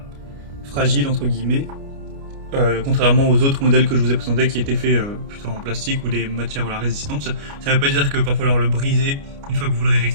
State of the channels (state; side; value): late; left; 29 ms